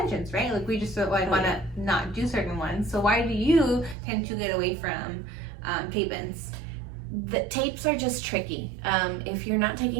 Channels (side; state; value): left; drops out; at 4.0 s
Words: right? We just want to not do certain ones. So why do you tend to get away from tape-ins? The tapes are just tricky. If you're not